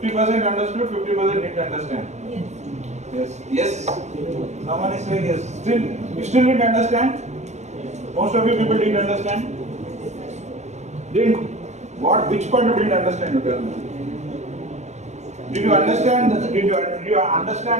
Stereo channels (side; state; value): left; late; 0.33 ms